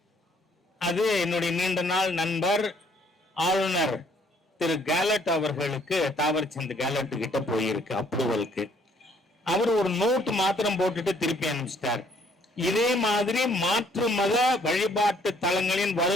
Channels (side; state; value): both; normal; correlation 0.64